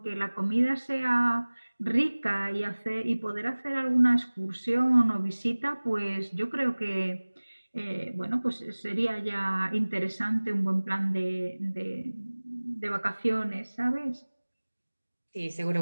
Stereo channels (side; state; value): both; inverted; correlation -1.00